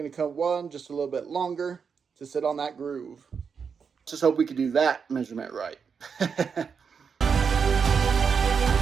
to cut one just a little bit longer to sit on that groove. Just hope we can do that measurement right.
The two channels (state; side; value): quieter; left; 6.2 dB